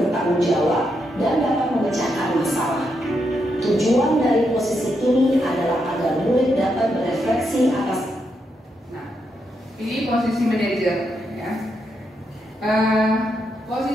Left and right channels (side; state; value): both; normal; correlation 0.82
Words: jawab, dan dapat memecahkan masalah. Tujuan dari posisi ini adalah agar murid dapat berefleksi atas. Ini posisi manajer, ya.